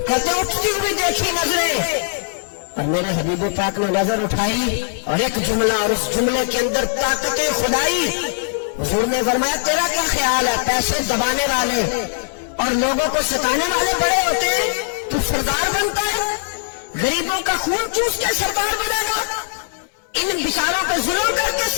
कहते उठती हुई देखी नजरें, और मेरे हबीब पाक ने नजर उठाई और एक जुमला, और उस जुमले के अंदर ताकते खुदाई। हुजूर ने फरमाया तेरा क्या ख्याल है, पैसे दबाने वाले और लोगों को सताने वाले बड़े होते हैं, तू सरदार बनता है, गरीबों का खून चूस के सरदार बनेगा, इन बिचारों को जुल्म करके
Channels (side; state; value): right; silent; digital silence